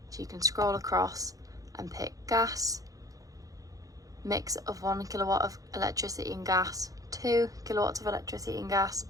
So you can scroll across and pick gas, mix of 1 kilowatt of electricity and gas, 2 kilowatts of electricity and gas,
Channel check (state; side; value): late; left; 0.17 ms